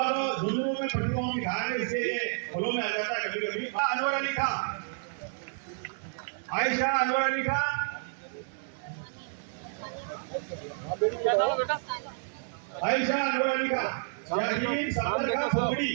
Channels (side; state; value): left; silent; 58 dB below the other